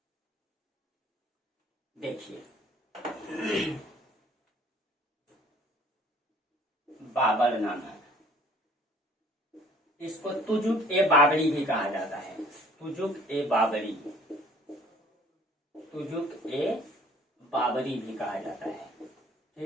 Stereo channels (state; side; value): normal; both; correlation 0.55